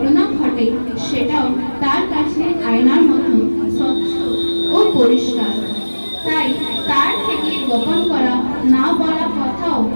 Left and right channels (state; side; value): inverted; both; correlation -1.00